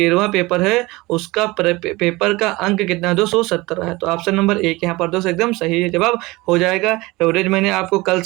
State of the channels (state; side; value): quieter; left; 21.7 dB